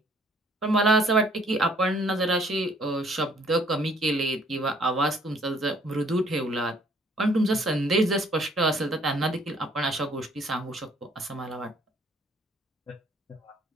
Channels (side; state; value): both; normal; correlation 0.61